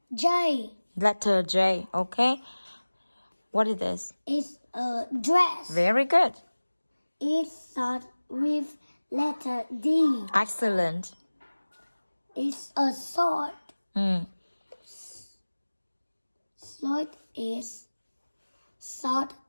J. Letter J. Okay. What is this? It's a dress. Very good. It starts with letter D. Excellent. It's a sword. Sword is start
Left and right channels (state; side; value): inverted; both; correlation -1.00